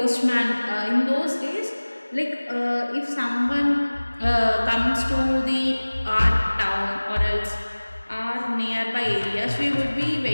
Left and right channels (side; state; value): both; inverted; correlation -1.00